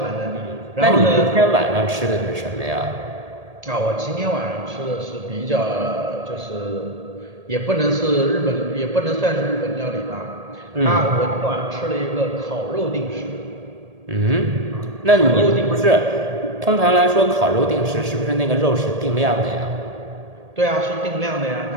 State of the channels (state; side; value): late; left; 1.8 ms